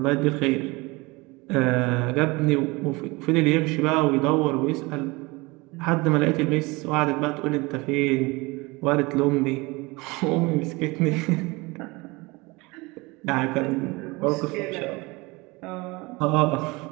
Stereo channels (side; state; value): left; quieter; 24.3 dB